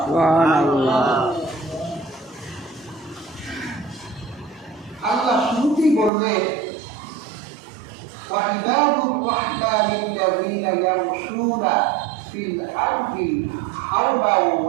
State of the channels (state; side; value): drops out; left; at 6.1 s